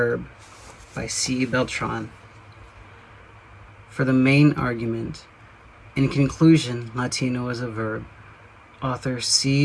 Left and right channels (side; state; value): both; identical; correlation 1.00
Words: by C. Beltran. For the main argument, in conclusion, Latino is a verb, author